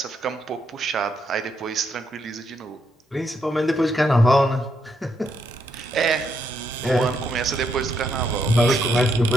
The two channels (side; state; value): both; normal; correlation 0.77